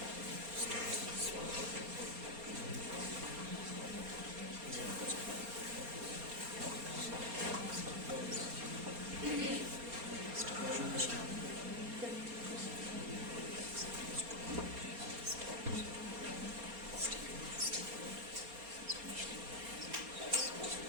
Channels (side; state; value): left; late; 4.3 ms